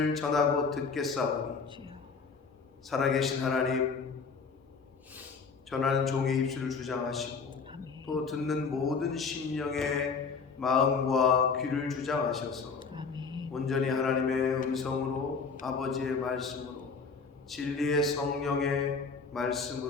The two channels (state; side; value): quieter; right; 5.1 dB